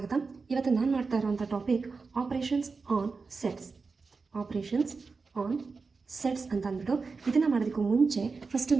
ಇವತ್ತು ನಾನು ಮಾಡ್ತಾ ಇರೋಂಥ topic operations on sets. Operations on sets ಅಂತ ಅಂದ್ಬಿಟ್ಟು ಇದನ್ನು ಮಾಡೋದಕ್ಕೂ ಮುಂಚೆ ಫಸ್ಟ್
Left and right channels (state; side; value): quieter; left; 4.5 dB